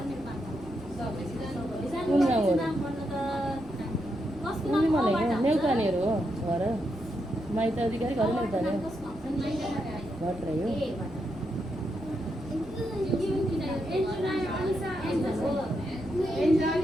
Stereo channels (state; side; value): noise; right; rumble, 20 dB below the sound